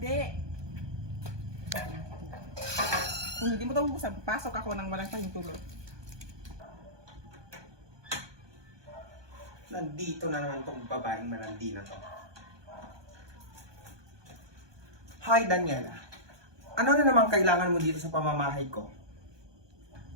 Kung hindi mo ito bubuksan, pasok ako ng walang pahintulot. Nandito na naman tong babaeng malandi na to. Hi, Daniela. Ano na naman kailangan mo dito sa pamamahay ko?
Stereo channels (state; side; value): late; left; 1.2 ms